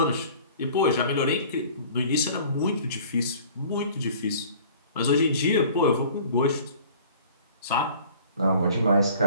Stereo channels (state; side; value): inverted; both; correlation -0.49